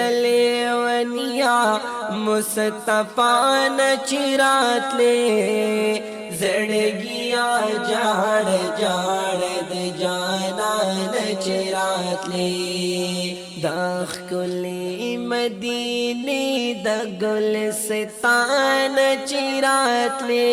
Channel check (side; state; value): both; identical; correlation 1.00